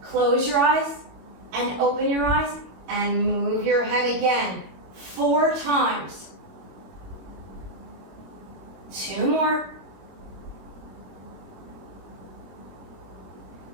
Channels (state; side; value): late; left; 22 ms